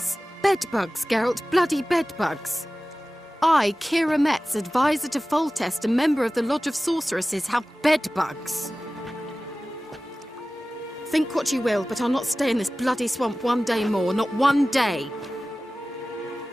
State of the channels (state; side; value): normal; both; correlation 0.96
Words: Bedbugs, Geralt. Bloody bedbugs. I, Kira Metz, advisor to Foltest, a member of the Lodge of Sorceresses, have bedbugs. Think what you will, but I'll not stay in this bloody swamp one day more. Not one day.